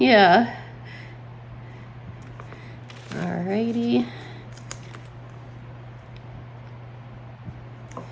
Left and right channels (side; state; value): both; identical; correlation 1.00